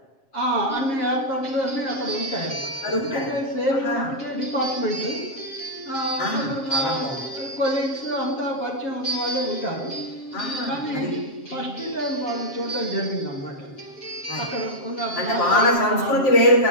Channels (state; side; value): late; right; 7.4 ms